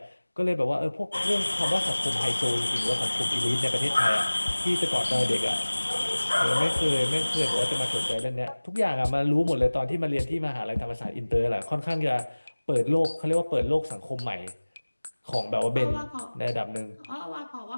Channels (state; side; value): inverted; both; correlation -1.00